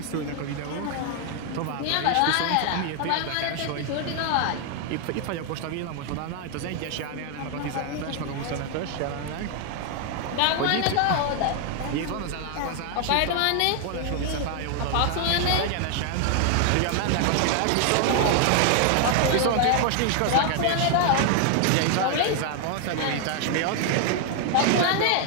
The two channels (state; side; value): different; both; correlation 0.00